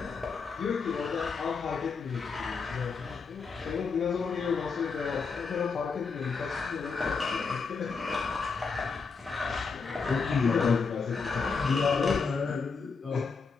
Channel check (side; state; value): right; quieter; 5.0 dB